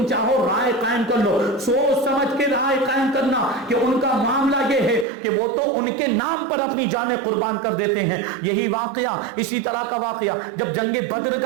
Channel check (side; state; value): left; drops out; at 5.1 s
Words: چاہو رائے قائم کر لو, سوچ سمجھ کے رائے قائم کرنا کہ ان کا معاملہ یہ ہے کہ وہ تو ان کے نام پر اپنی جانیں قربان کر دیتے ہیں. یہی واقعہ, اسی طرح کا واقعہ جب جنگ بدر